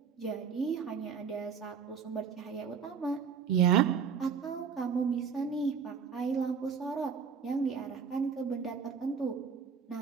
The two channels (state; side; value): quieter; left; 6.4 dB